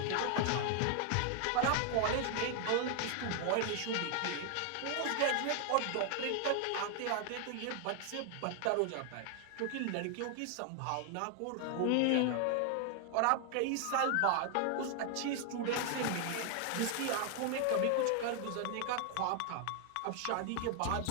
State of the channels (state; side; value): different; both; correlation 0.00